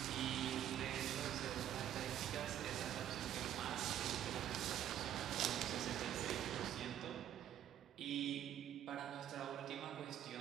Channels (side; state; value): left; quieter; 10.9 dB